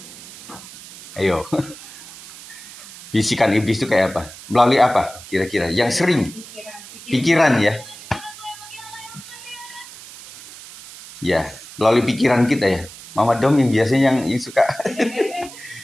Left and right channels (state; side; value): noise; right; hiss, 16 dB below the sound